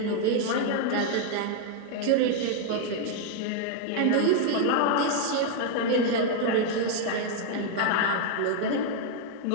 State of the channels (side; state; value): both; different; correlation 0.00